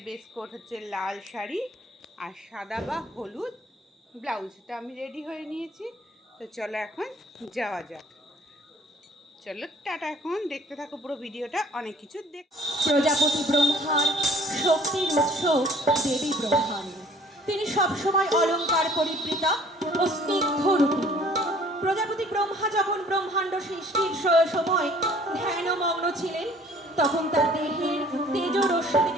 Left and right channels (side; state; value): both; normal; correlation 0.54